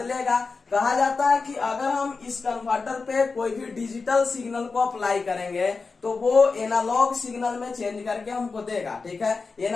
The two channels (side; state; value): right; quieter; 4.4 dB